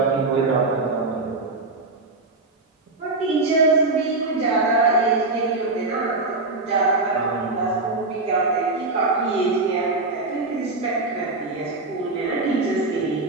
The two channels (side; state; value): left; quieter; 3.3 dB